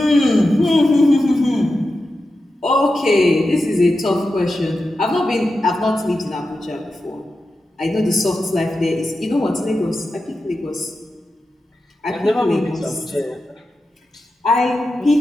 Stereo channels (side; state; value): both; normal; correlation 0.91